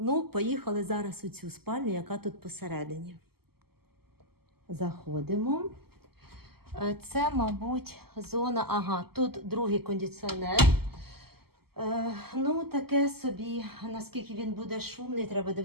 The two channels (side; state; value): left; late; 0.95 ms